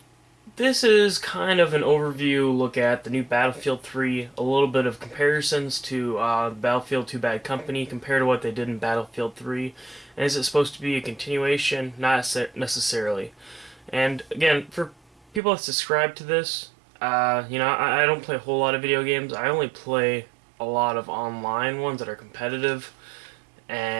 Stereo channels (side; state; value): left; drops out; at 15.4 s